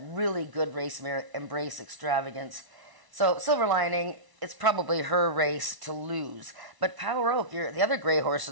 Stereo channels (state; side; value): late; left; 1.0 ms